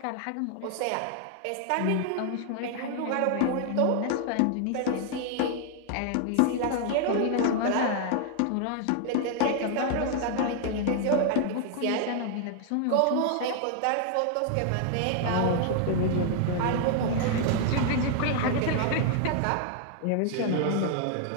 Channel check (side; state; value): both; different; correlation 0.00